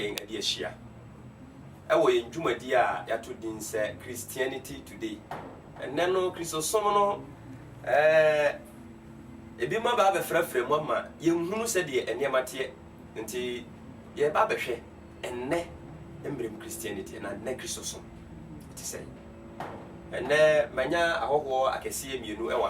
ade ahia ewo yen dwumadi a yato din se Christianity Today enne no Christosom no ebi ma ba befrafra mu ama yenhunu se de eniamate nti ye ba behwe enne embrem Christianity na ne Christosom ti say enne manya ahoho akese mienu e wa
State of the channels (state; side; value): identical; both; correlation 1.00